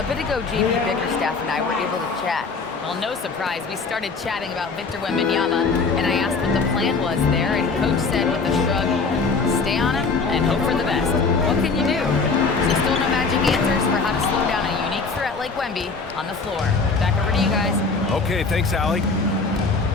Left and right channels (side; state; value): right; quieter; 4.4 dB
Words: bit ago, JP Bickerstaff and I were able to chat. Well, no surprise, we started chatting about Victor Wembanyama, and I asked what the plan was there, and Coach said with a shrug, stay on him and hope for the best. What can you do? So still no magic answers for how to slow down a unique threat like Wemby on the floor. Back over to you guys. Okay, thanks, Allie.